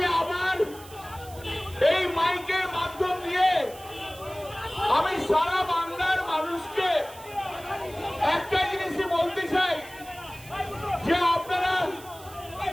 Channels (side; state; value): right; noise; hiss, 19 dB below the sound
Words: আবার এই মাইকের মাধ্যম দিয়ে আমি সারা বাংলার মানুষকে একটা জিনিসই বলতে চাই যে আপনারা